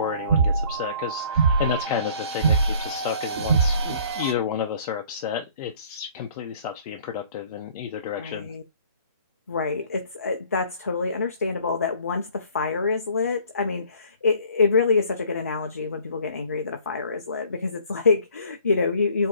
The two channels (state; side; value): inverted; both; correlation -0.54